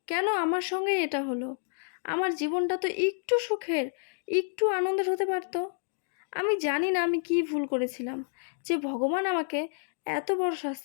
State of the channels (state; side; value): silent; right; digital silence